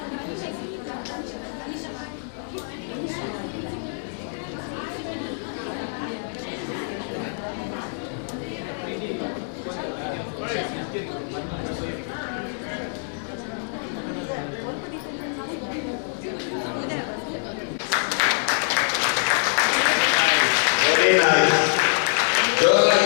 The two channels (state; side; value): silent; right; 62 dB below the other